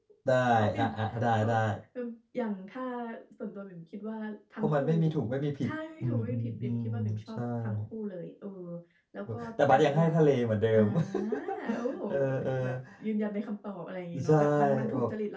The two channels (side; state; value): both; identical; correlation 1.00